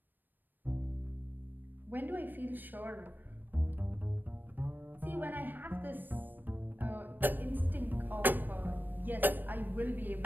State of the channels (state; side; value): late; left; 0.092 ms